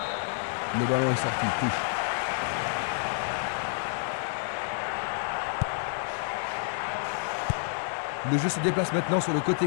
Le ballon est sorti, touche. Le jeu se déplace maintenant sur le côté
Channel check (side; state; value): right; silent; digital silence